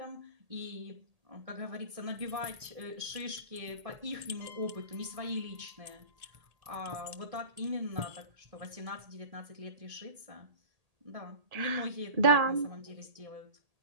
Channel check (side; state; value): left; late; 1.8 ms